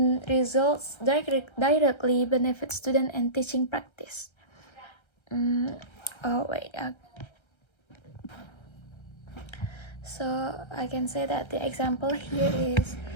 results directly benefit student and teaching practice. So I can say that the example here is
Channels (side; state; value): right; late; 1.3 ms